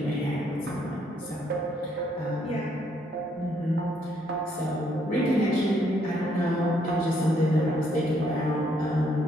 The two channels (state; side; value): normal; both; correlation 0.70